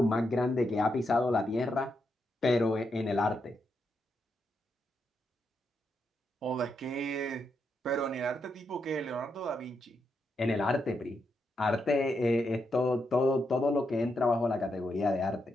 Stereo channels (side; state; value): both; normal; correlation 0.82